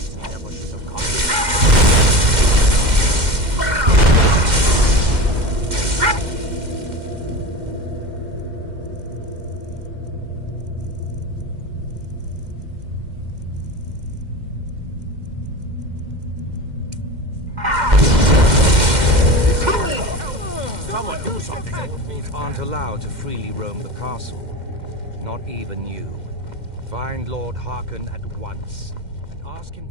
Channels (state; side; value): late; left; 2.1 ms